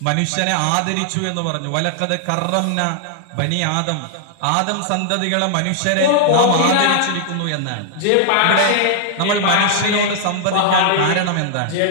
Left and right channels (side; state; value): both; different; correlation -0.01